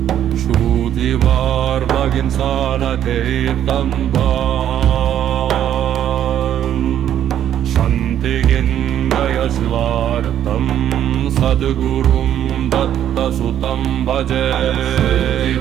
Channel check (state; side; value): quieter; left; 10.5 dB